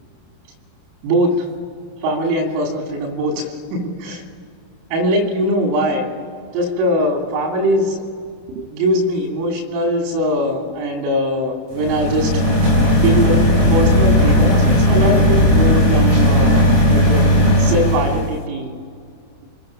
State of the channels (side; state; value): left; late; 27 ms